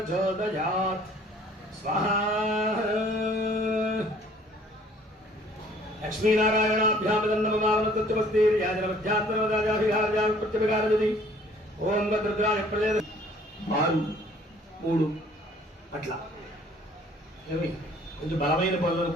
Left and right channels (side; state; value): both; normal; correlation 0.56